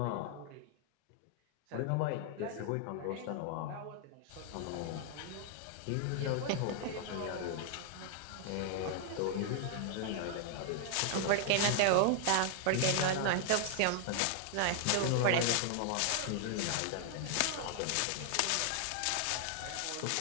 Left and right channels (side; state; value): both; different; correlation 0.00